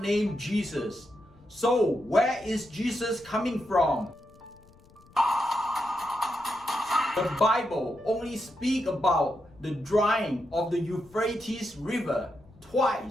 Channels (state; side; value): noise; left; rumble, 27 dB below the sound